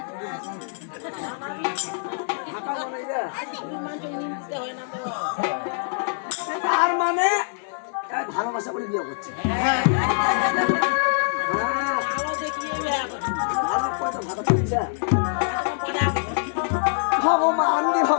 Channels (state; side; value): silent; right; digital silence